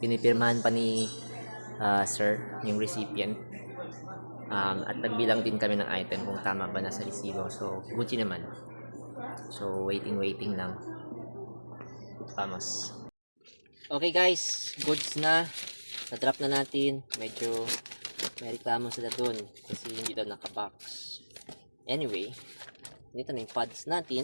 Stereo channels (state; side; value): inverted; both; correlation -1.00